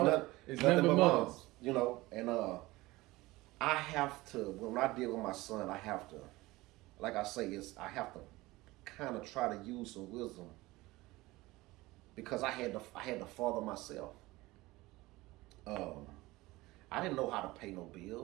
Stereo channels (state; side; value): quieter; left; 19.8 dB